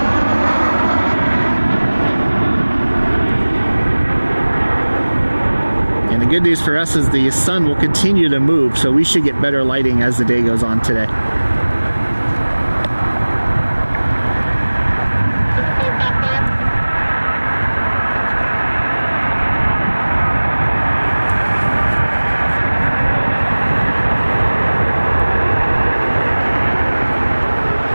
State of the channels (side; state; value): both; inverted; correlation -1.00